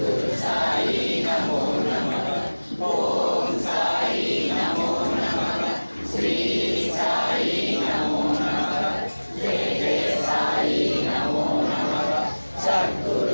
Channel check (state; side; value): inverted; both; correlation -1.00